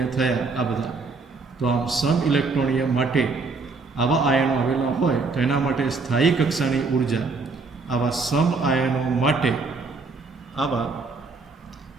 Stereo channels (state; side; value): quieter; left; 4.1 dB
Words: થયા આ બધા. તો આમ સમ ઇલેક્ટ્રોનીય માટે આવા આયનો આવેલા હોય તો એના માટે સ્થાયી કક્ષાની ઉર્જા આવા સમ આયનો માટે આવા